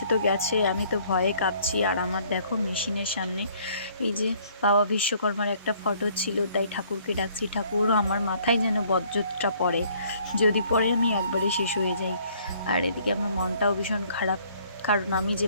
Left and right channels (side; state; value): both; inverted; correlation -0.60